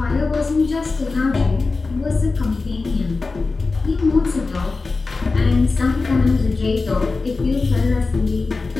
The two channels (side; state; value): right; quieter; 3.9 dB